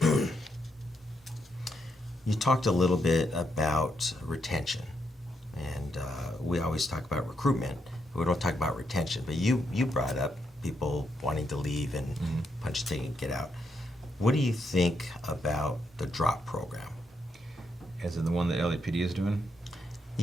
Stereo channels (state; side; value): normal; both; correlation 0.80